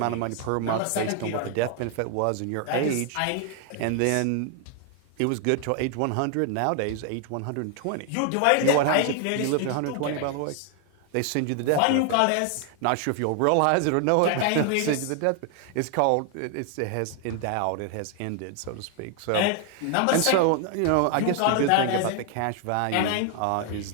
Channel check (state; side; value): different; both; correlation 0.00